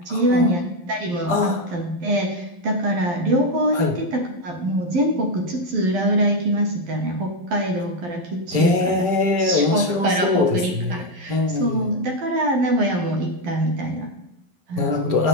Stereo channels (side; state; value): left; late; 11 ms